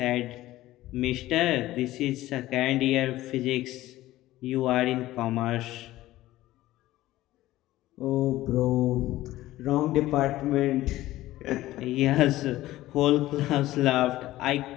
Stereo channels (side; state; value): right; quieter; 16.0 dB